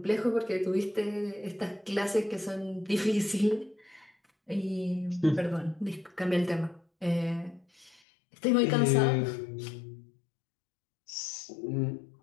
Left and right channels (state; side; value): drops out; right; at 8.0 s